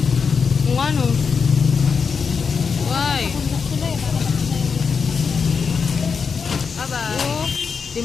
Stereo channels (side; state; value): right; quieter; 5.7 dB